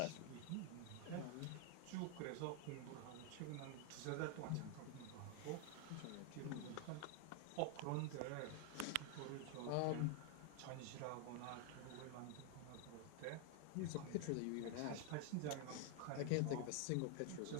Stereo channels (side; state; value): both; different; correlation 0.00